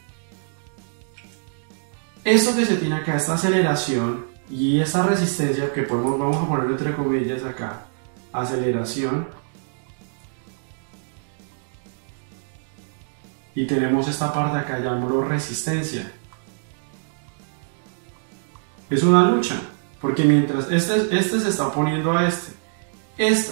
Esto que se tiene acá, esta aceleración y esta resistencia que vamos a poner entre comillas acá, aceleración, y tenemos esta parte acá, llamémoslo resistencia. Es una lucha, porque mientras este se está oponiendo a este,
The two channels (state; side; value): silent; left; digital silence